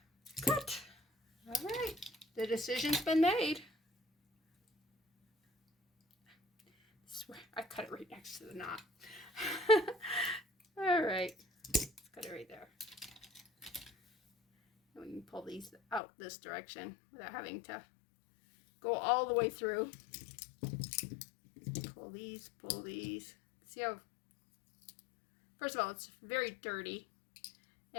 cut. All right. The decision's been made. I cut it right next to the knot. All right. Let's cut it right there. And we can pull these out this direction without having to go all the way through. Pull these, pull these. See how, first of all, it's very dirty,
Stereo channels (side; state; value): right; drops out; at 16.0 s